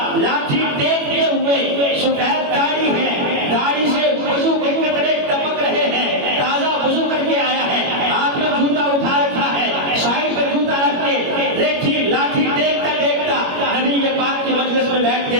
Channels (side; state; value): left; late; 21 ms